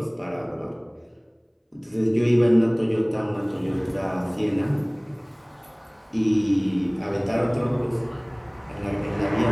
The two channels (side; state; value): both; identical; correlation 1.00